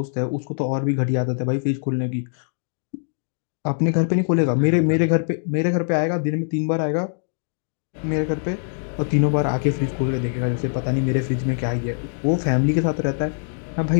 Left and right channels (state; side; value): silent; right; digital silence